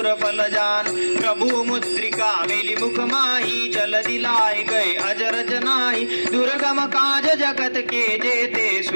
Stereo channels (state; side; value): inverted; both; correlation -1.00